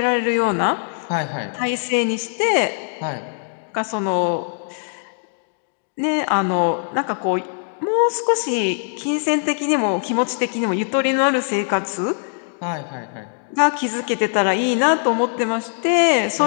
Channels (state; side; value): silent; right; digital silence